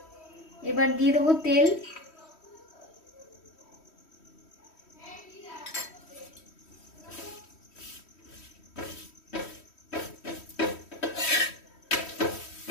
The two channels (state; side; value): late; right; 3.1 ms